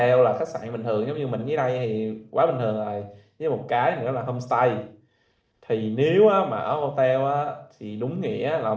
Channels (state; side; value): identical; both; correlation 1.00